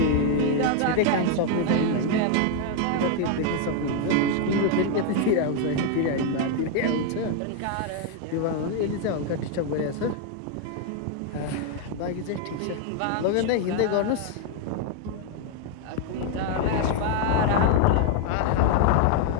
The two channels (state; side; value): different; both; correlation 0.00